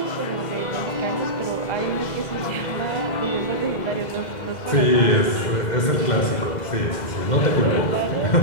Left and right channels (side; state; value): right; late; 2.1 ms